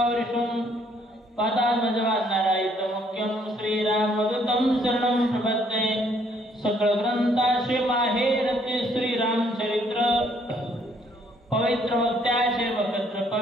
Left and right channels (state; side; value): normal; both; correlation 0.66